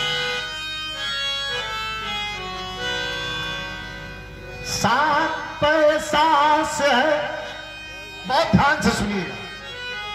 सात पैसा से बहुत ध्यान से सुनिएगा,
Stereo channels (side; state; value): both; identical; correlation 1.00